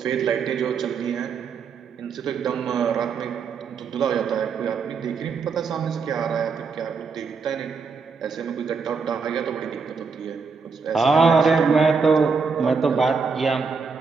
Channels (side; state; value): left; quieter; 5.2 dB